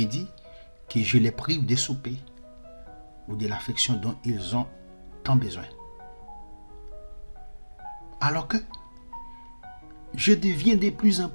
que je les prive de souper ou de l'affection dont ils ont tant besoin. Alors que je deviens de plus en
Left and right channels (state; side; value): inverted; both; correlation -1.00